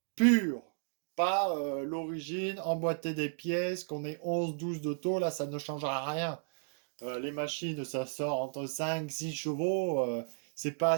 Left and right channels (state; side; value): silent; left; digital silence